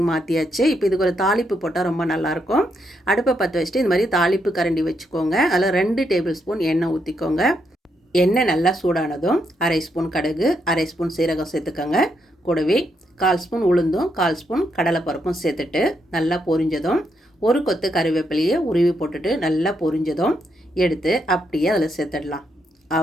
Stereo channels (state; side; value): normal; both; correlation 0.79